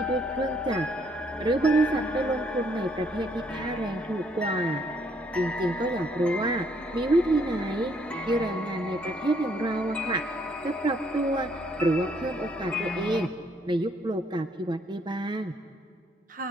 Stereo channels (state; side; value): normal; both; correlation 0.68